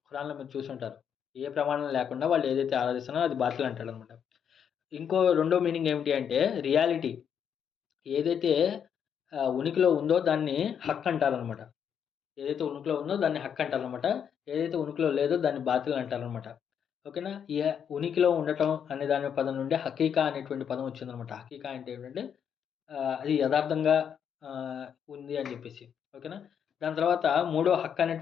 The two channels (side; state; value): right; quieter; 8.0 dB